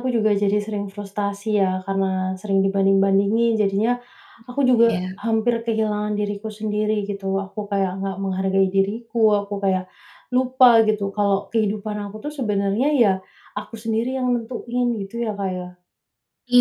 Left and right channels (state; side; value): identical; both; correlation 1.00